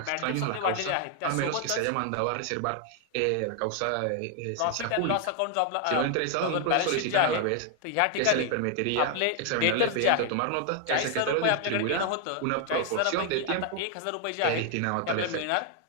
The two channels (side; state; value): both; different; correlation 0.00